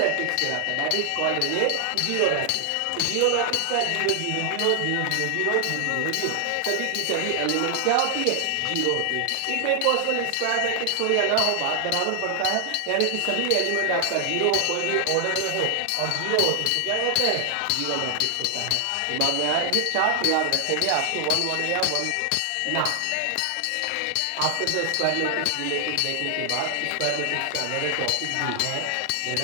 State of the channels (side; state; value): both; different; correlation 0.00